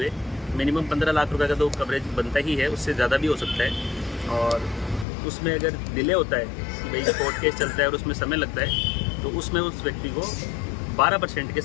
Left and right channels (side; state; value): right; drops out; at 5.1 s